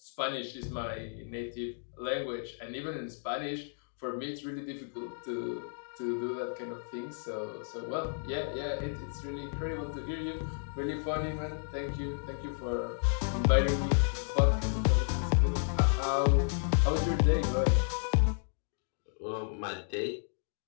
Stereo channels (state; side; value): silent; right; digital silence